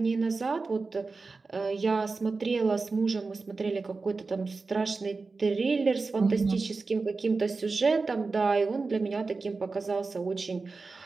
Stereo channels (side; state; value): left; quieter; 4.0 dB